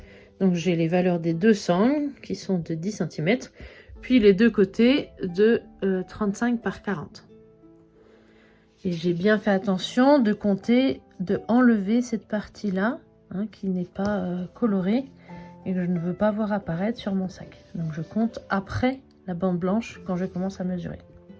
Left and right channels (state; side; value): identical; both; correlation 1.00